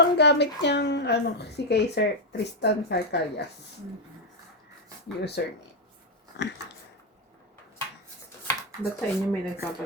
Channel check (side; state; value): both; normal; correlation 0.03